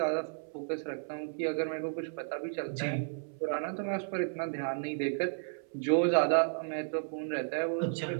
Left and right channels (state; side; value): silent; left; 56 dB below the other